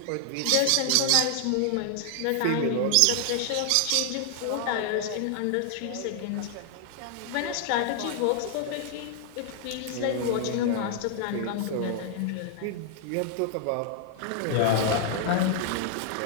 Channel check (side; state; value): both; different; correlation 0.00